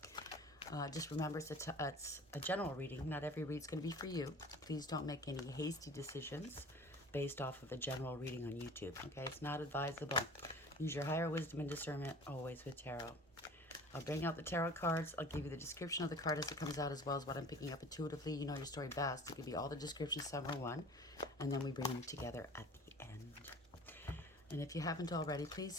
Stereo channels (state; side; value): normal; both; correlation 0.44